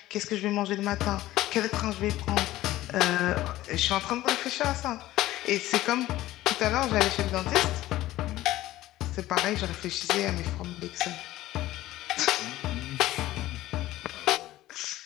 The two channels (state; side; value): quieter; right; 15.8 dB